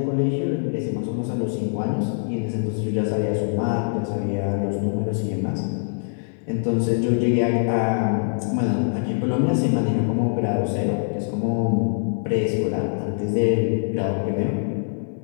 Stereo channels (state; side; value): silent; right; 58 dB below the other